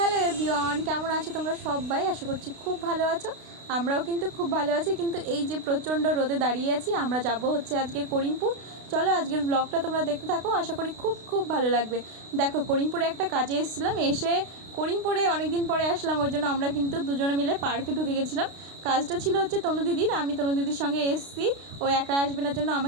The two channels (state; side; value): late; left; 32 ms